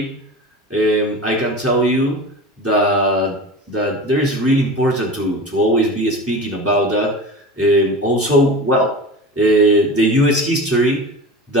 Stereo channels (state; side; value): normal; both; correlation 0.32